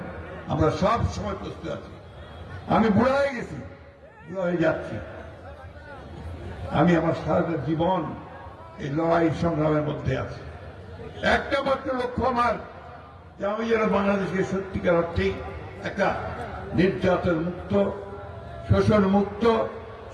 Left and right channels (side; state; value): both; identical; correlation 1.00